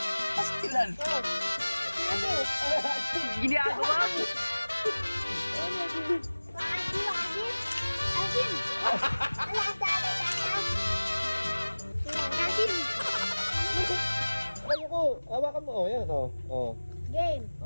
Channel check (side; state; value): both; inverted; correlation -1.00